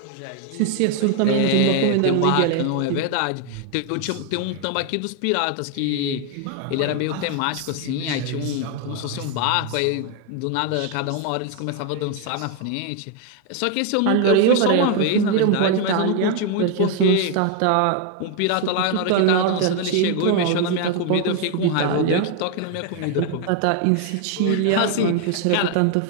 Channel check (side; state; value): both; different; correlation 0.01